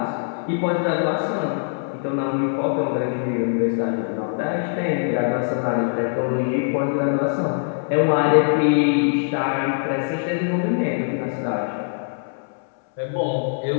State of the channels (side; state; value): right; silent; 64 dB below the other